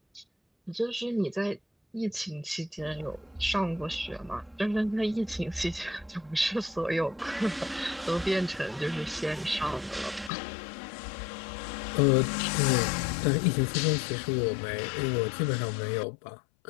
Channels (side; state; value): right; drops out; at 10.3 s